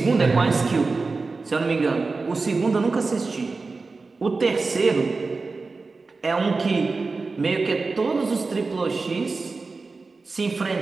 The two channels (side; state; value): left; quieter; 4.0 dB